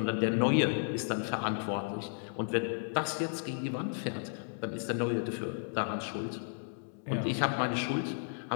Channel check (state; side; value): silent; right; digital silence